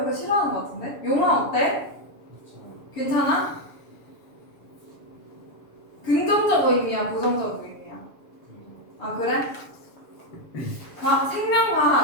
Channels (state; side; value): late; right; 6.9 ms